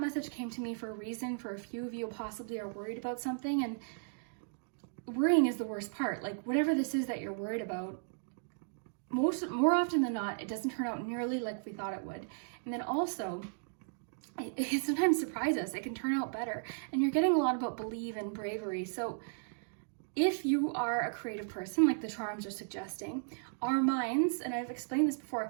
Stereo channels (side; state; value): left; silent; digital silence